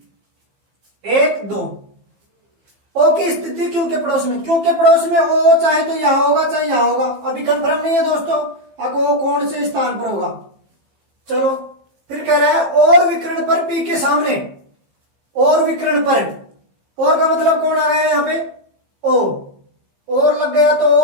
एक दो। ओ की स्थिति क्यों के पड़ोस में, क्यों के पड़ोस में ओ चाहे तो यहां होगा चाहे यहां होगा, अभी कंफर्म नहीं है दोस्तों अब वो कौन से स्थान पर होगा। चलो फिर कह रहा है और विकर्ण पर पी के सामने, और विकर्ण पर, और का मतलब कौन आ गया यहां पे, ओ, और लग गया तो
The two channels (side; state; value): left; late; 15 ms